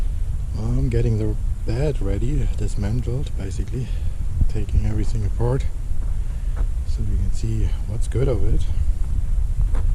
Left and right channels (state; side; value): identical; both; correlation 1.00